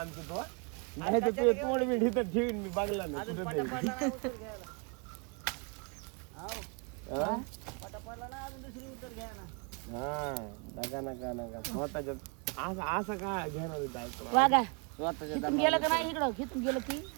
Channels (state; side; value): quieter; left; 34.9 dB